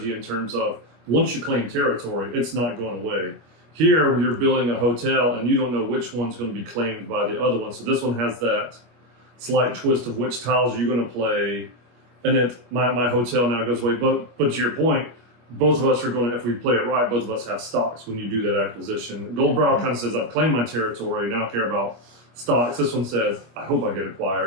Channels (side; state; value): left; late; 25 ms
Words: in terms of once you claim territory, it's not going away. Here, you're building a hotel and you don't know which one's going to be claimed by the other one. So this one has that slight twist of which tiles you're going to play. And then my hotel now goes away. But to your point, both of us are going to, if we play it right, both of us have stocks when you do that acquisition. Goldbrow kind of says, I've claimed my territory, now I care about stocks. This one says, I hope I get